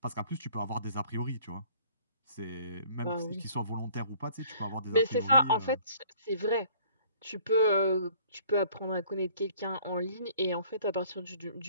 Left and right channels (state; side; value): inverted; both; correlation -0.54